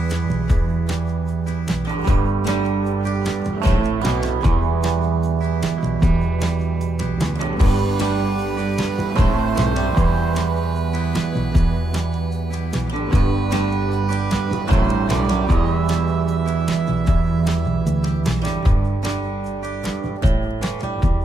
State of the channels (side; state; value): both; normal; correlation 0.83